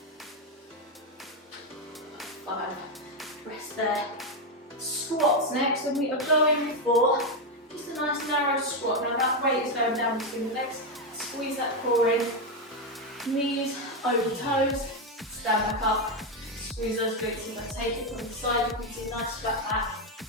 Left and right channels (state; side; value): normal; both; correlation 0.06